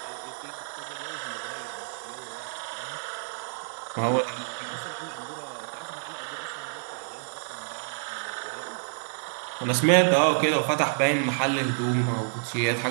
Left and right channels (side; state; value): left; silent; 59 dB below the other